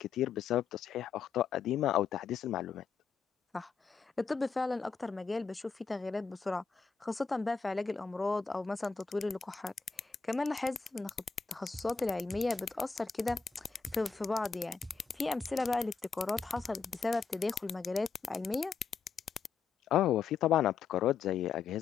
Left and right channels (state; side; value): quieter; right; 5.5 dB